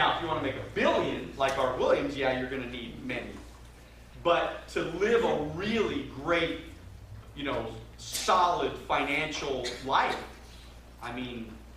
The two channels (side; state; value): both; identical; correlation 1.00